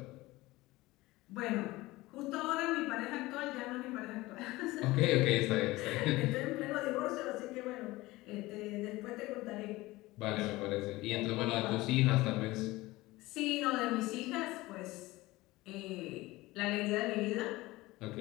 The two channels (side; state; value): right; quieter; 19.6 dB